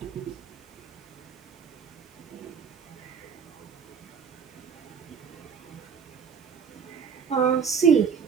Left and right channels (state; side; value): quieter; left; 6.5 dB